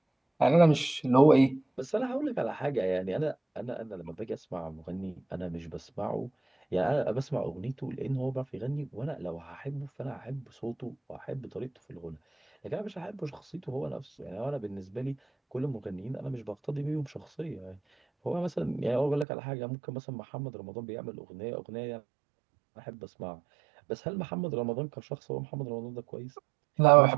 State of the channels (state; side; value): drops out; left; at 19.2 s